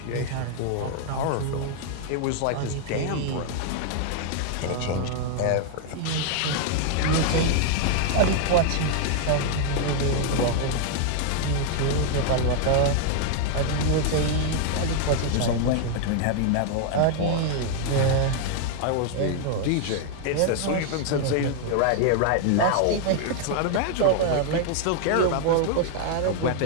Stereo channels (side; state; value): both; different; correlation 0.00